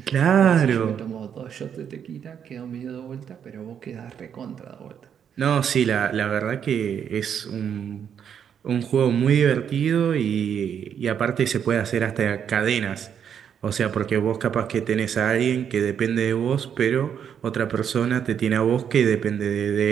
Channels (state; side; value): quieter; left; 8.2 dB